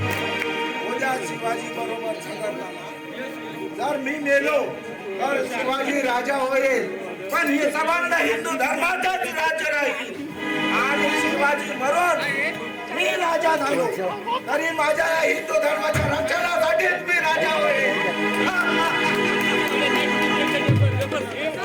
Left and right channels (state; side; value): identical; both; correlation 1.00